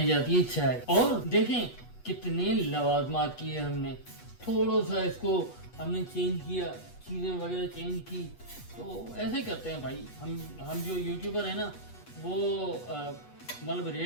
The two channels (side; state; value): right; late; 8.2 ms